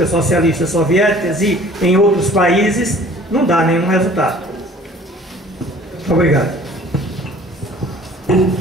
Socialistas Soviéticas e em outros países, não dá nenhum resultado. Obrigado.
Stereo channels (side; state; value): both; normal; correlation 0.50